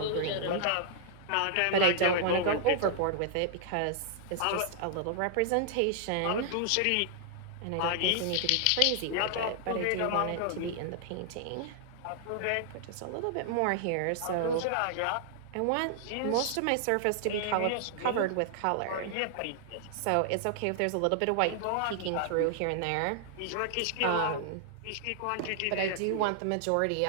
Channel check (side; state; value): both; different; correlation -0.01